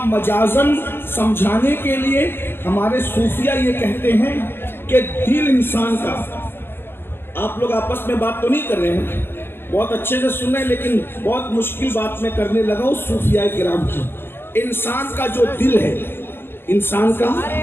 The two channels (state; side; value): late; right; 0.11 ms